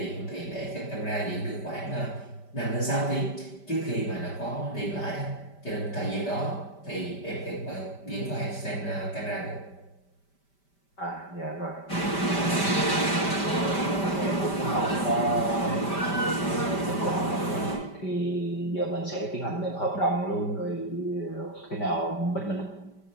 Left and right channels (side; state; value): right; late; 5.1 ms